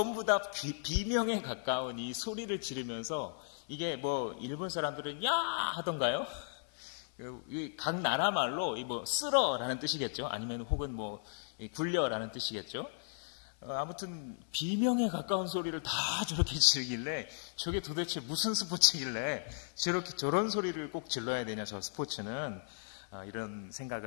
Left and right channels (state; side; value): silent; right; 54 dB below the other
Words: 다 비명에 가까운 이 소리를 지르면서, 이게 뭐 일본 사람들은 야 하던가요? 각 나라 말로 뭐 쓸어라는 뜻이겠죠. 아니면 혹은 뭐 굴려라는 뜻이겠죠. 아무튼 비명에 가까운 소리를 다 저렇게 지르길래 저게 도대체 무슨 스포츠길래 저런 소리를 꼭 질러야 되냐, 저 스포츠는. 이런